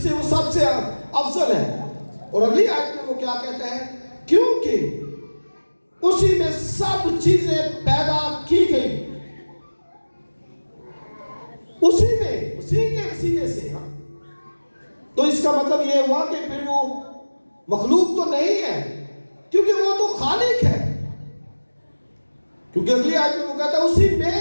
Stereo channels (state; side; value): inverted; both; correlation -1.00